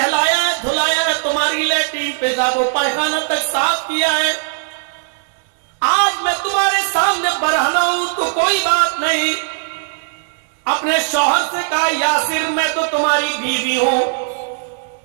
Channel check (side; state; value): left; silent; digital silence